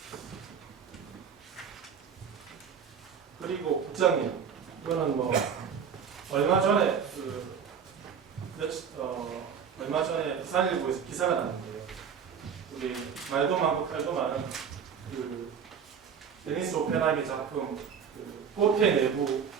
그리고 국장님 이거는 뭐 얼마 전에 얼마 전에 부산일보에서 기사가 났는데요. 우리 말도 많고 칼도 많은 그 데니스 오펜하이의 작품 그 호텔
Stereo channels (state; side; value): quieter; left; 7.2 dB